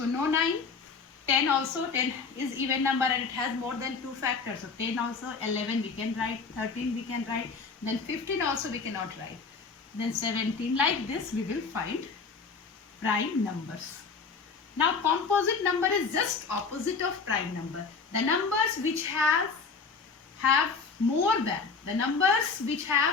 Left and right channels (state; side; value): quieter; right; 4.9 dB